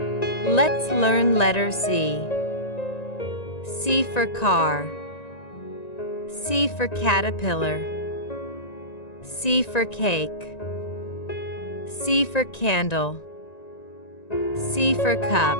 Let's learn letter C. C for car. C for caterpillar. C for cake. C for candle. C for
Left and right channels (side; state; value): right; late; 1.9 ms